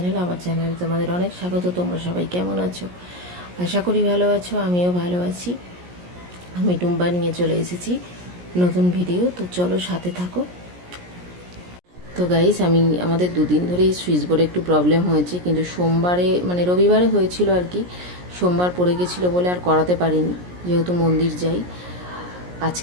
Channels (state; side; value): late; left; 17 ms